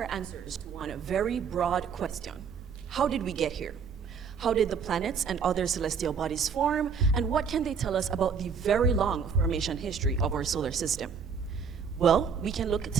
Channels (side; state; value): left; quieter; 6.2 dB